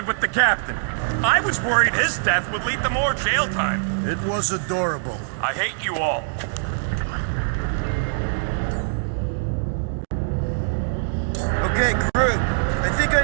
with the captain. I was worried his death would lead to more jail time. It was adorable. I hate you all. Okay, crew. I think I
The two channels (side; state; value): left; silent; digital silence